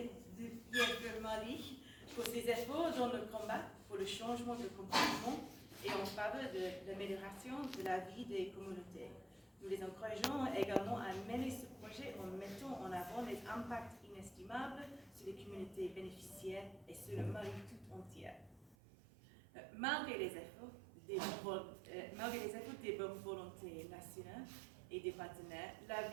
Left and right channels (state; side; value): drops out; left; at 18.8 s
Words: Mali pour ses efforts dans le combat pour le changement de comportement et en faveur de l'amélioration de la vie des communautés. Nous les encourageons également à mener ce projet en mettant en avant les impacts inestimables sur les communautés bénéficiaires et sur le Mali tout entier. Malgré les efforts des bonnes volontés nationales et des partenaires, la